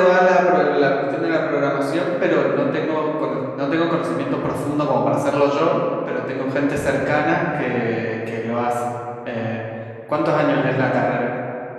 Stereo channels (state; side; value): identical; both; correlation 1.00